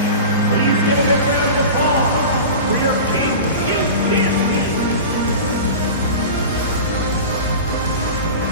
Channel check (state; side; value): inverted; both; correlation -0.31